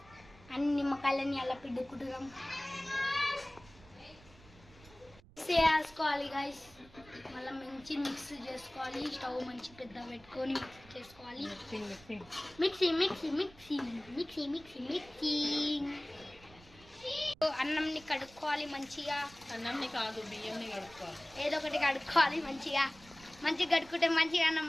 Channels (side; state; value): right; noise; rumble, 23 dB below the sound